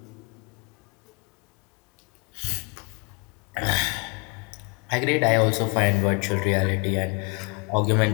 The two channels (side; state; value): right; quieter; 32.9 dB